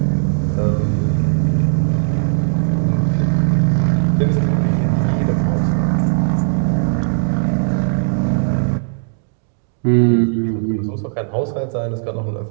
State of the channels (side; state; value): left; silent; digital silence